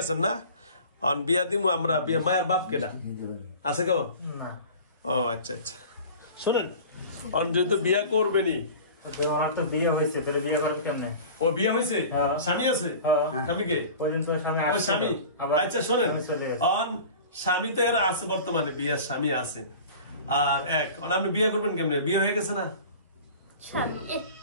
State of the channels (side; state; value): both; inverted; correlation -0.40